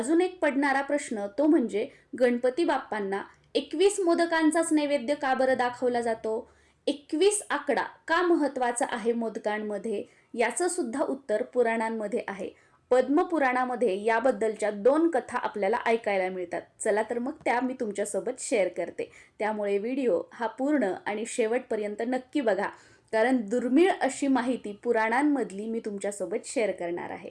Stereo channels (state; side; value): identical; both; correlation 1.00